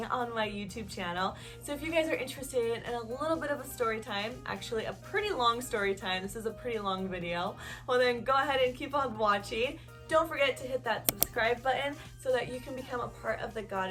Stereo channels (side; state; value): both; identical; correlation 1.00